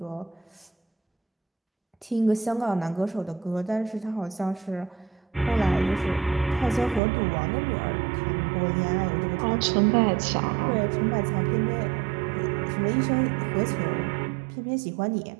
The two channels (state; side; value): drops out; left; at 7.0 s